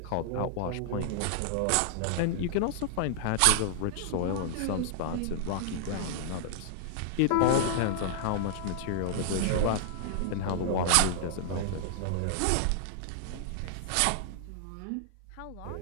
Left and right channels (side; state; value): both; different; correlation -0.01